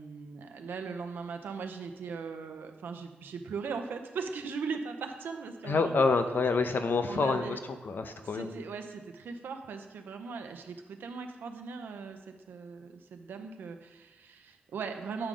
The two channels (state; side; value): normal; both; correlation 0.76